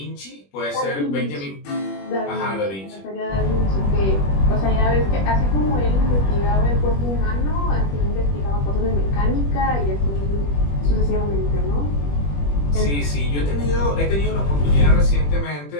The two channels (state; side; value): late; right; 21 ms